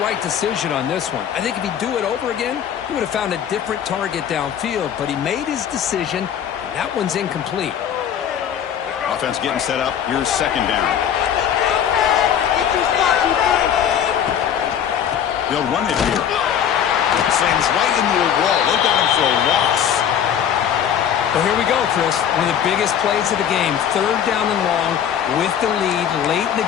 decision on this one. I think if he'd do it over again, he would have found a different target downfield. But he made his decision, and that one's incomplete. Offense getting set up. Here's second down. They'll run it here. Sends right into a wall. They got him for a loss. Well, here we go, Chris. One of the biggest plays of the game. 3rd down and long with the lead late in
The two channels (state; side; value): quieter; right; 9.1 dB